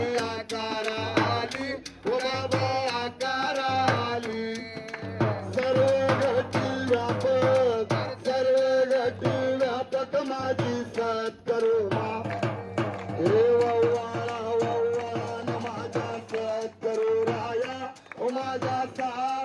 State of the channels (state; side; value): identical; both; correlation 1.00